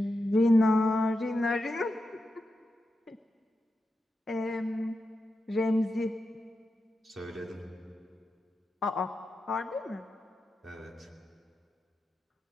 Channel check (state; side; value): normal; both; correlation 0.89